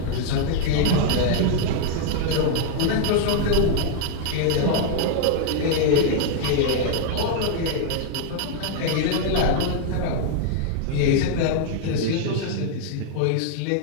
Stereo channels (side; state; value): both; different; correlation 0.00